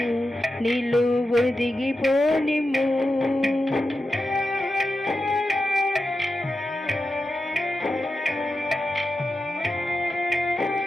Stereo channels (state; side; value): normal; both; correlation 0.90